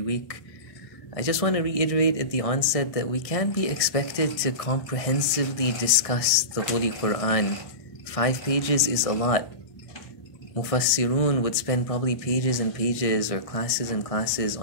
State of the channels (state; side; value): late; right; 1.6 ms